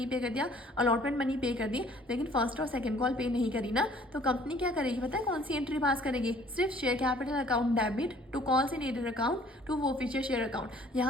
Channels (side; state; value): both; normal; correlation 0.56